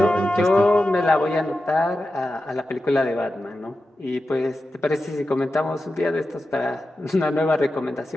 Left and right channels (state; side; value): normal; both; correlation 0.92